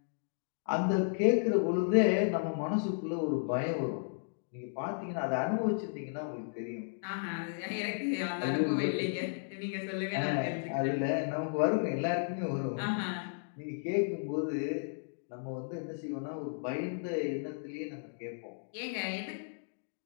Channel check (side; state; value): right; silent; digital silence